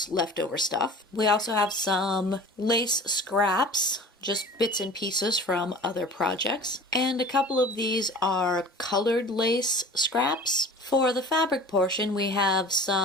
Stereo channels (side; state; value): both; normal; correlation 0.41